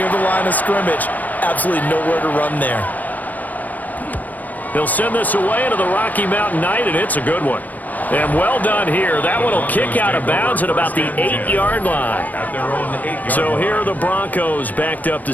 the line of scrimmage. Absolutely nowhere to run there. He'll send this away into the Rocky Mountain Night, and it's a good one. And well done here. That one will kick out of bounds at about the 8-yard line. So here are the Broncos backed up to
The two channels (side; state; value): right; late; 0.081 ms